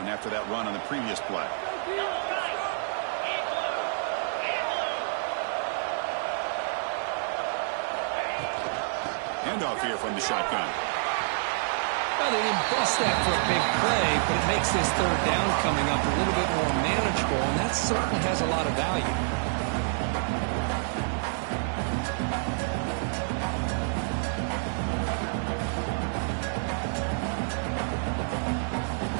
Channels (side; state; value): left; silent; digital silence